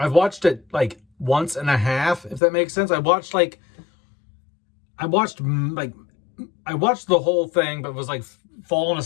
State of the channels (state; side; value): drops out; right; at 2.4 s